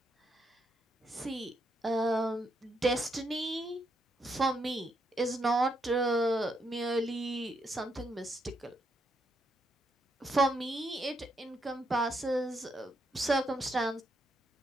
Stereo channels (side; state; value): both; normal; correlation 0.78